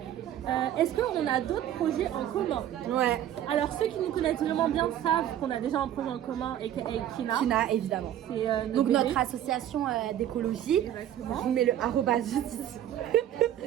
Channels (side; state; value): left; quieter; 11.4 dB